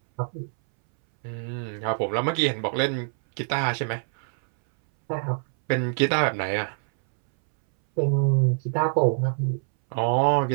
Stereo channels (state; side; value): silent; left; 62 dB below the other